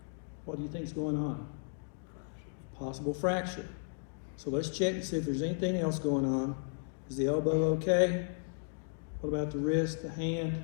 What do you think's going on? Possible fracture. So let's check and see if there's anything else going on. Is the elbow okay? What about the wrist, the hand,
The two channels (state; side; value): silent; right; digital silence